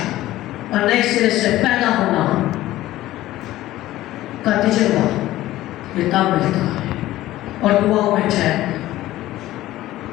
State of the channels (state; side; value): quieter; right; 15.5 dB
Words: اور نئے سرے سے پیدا ہونا کا تجربہ یہ تب ملتا ہے. اور دعاؤں میں ٹھہرنا،